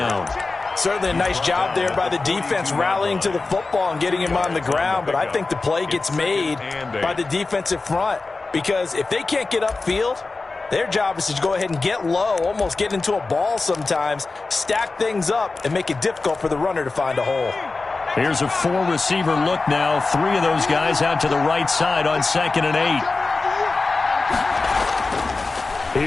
Certainly a nice job there by the defense rallying to the football and getting him on the ground. But I think the play gets made by the defensive front. Because if they can't get upfield, their job is to go ahead and get low, almost get into a ball sometimes, stack things up, and make it difficult for the runner to find a hole. Here's a four-receiver look now. 3 of those guys out to the right side on 2nd and 8.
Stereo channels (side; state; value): right; quieter; 3.7 dB